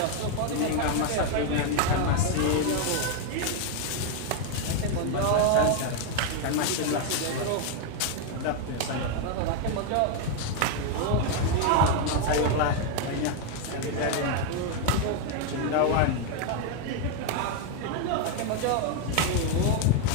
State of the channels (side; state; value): both; different; correlation 0.01